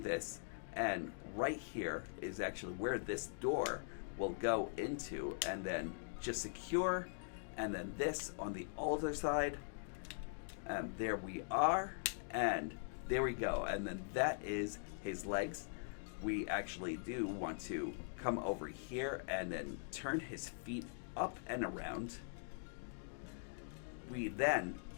and right here is actually where this door will go into, and then just secure, and then this on the other side, and there we are, and there we go, and then that is his legs. We actually do want to come over here and then turn his feet up and around. We then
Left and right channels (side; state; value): right; silent; digital silence